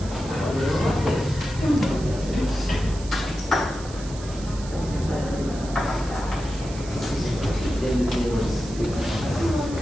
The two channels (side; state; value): right; noise; hiss, 16 dB below the sound